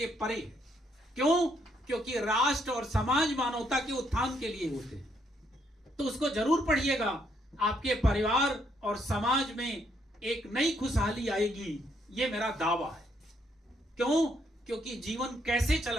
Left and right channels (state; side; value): normal; both; correlation 0.73